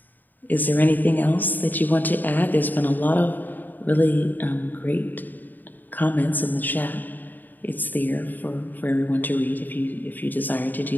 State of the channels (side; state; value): right; late; 0.088 ms